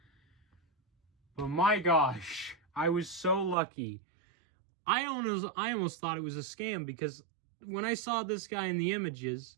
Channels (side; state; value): left; drops out; at 3.6 s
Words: But my gosh, I was so lucky. I almost thought it was a scam because when I saw this guy in the images,